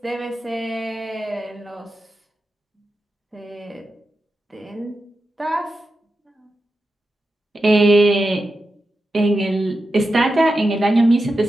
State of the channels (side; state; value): both; normal; correlation 0.90